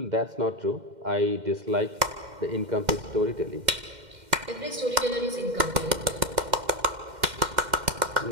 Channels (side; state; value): left; late; 2.1 ms